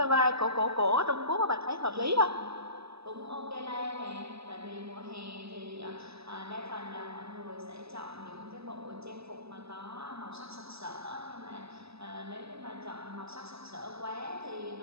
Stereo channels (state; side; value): late; left; 0.78 ms